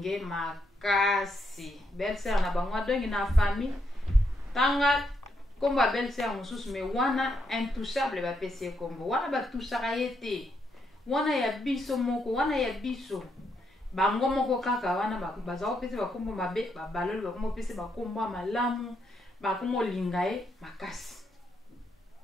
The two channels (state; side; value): normal; both; correlation 0.78